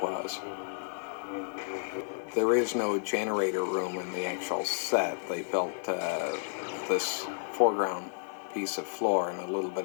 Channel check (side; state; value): right; silent; digital silence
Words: was. There is no generator room in the actual set. They built this foreground piece of floor and a little bit